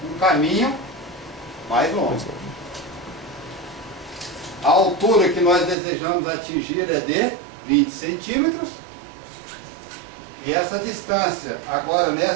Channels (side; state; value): left; drops out; at 5.8 s